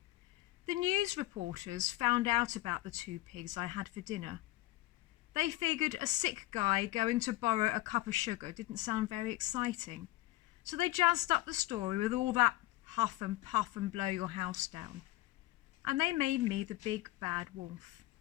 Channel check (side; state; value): right; quieter; 17.3 dB